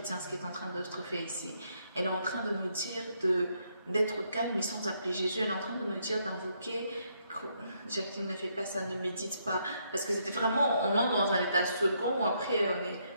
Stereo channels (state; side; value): inverted; both; correlation -0.74